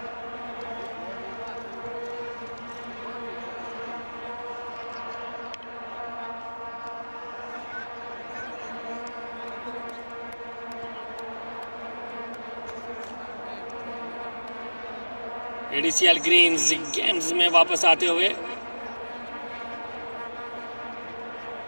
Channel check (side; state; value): both; inverted; correlation -1.00